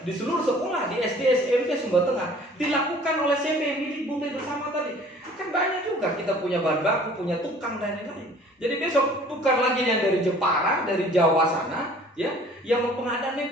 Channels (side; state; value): both; normal; correlation 0.51